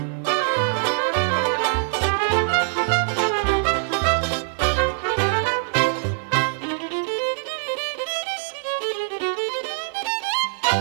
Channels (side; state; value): left; silent; 63 dB below the other